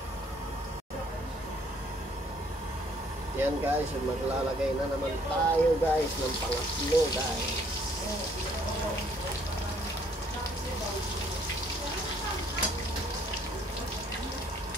Yan guys, maglalagay na naman tayo guys ng pangatlo guys.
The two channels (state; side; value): normal; both; correlation 0.63